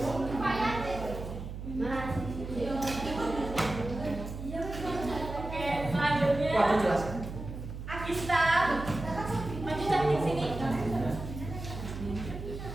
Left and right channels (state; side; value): noise; right; hum, 8 dB below the sound